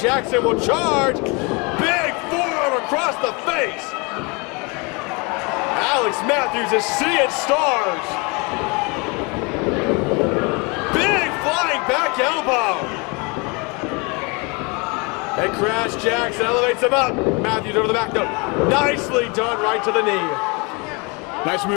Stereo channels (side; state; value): right; quieter; 29.5 dB